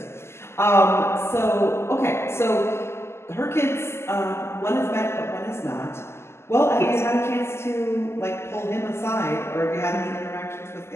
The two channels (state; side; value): late; right; 0.12 ms